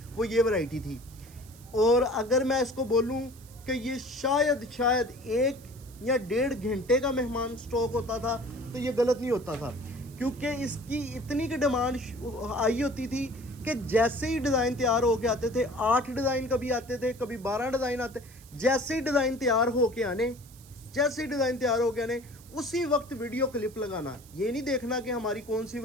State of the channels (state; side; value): noise; right; hiss, 23 dB below the sound